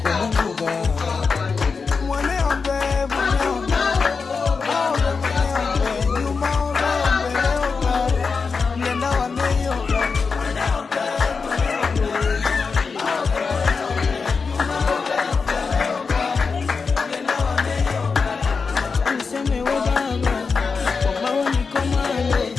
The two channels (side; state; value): right; quieter; 5.0 dB